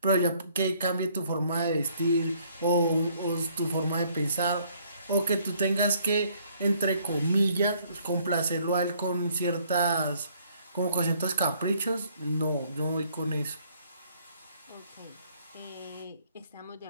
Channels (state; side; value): inverted; both; correlation -0.63